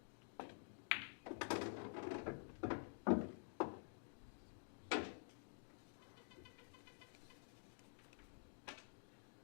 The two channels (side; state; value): right; silent; digital silence